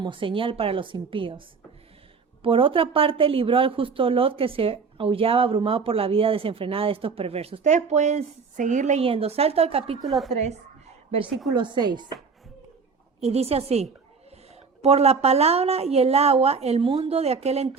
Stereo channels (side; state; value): left; quieter; 5.2 dB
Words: señal para los impíos. Por otra parte, libró al justo Lot, que se aullaba abrumado por la vida desenfrenada de estos perversos. Ustedes pueden seguir leyendo. Salto al capítulo 3, versículo 6. Y dice así: por la palabra y el agua, el mundo de aquel